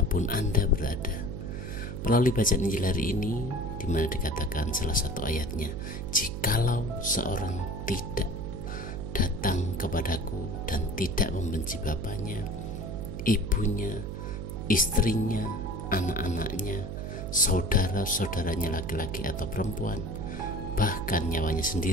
Anda berada. Melalui bacaan Injil hari ini, di mana dikatakan salah satu ayatnya, "Jikalau seorang tidak datang kepadaku dan tidak membenci bapaknya, ibunya, istrinya, anak-anaknya, saudara-saudaranya laki-laki atau perempuan, bahkan nyawanya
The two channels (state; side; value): noise; right; hum, 6 dB below the sound